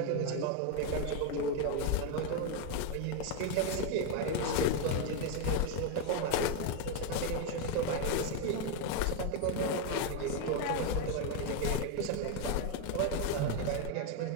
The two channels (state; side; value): different; both; correlation 0.01